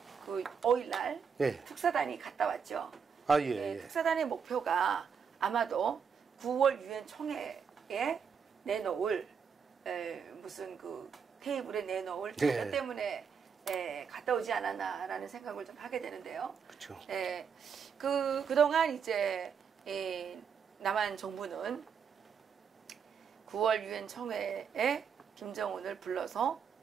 그 5일날 특사단이 갔다 왔죠. 아, 예. 특사단의 목표가 아마도 9월 유엔 총회에 내놓을 무슨 그 테이블에 내놓을 자료 때문에 갔다 오지 않았나라는 생각을 좀 하게 되는데요. 그렇죠. 그동안 이제 남한 정부는 9월 유엔 총회에 김정은을 불러서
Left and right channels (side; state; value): left; quieter; 6.7 dB